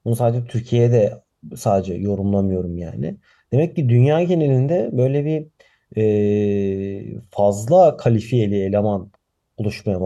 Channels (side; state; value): both; identical; correlation 1.00